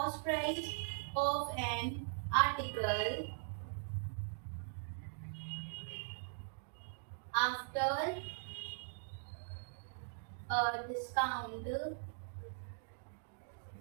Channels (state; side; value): silent; left; digital silence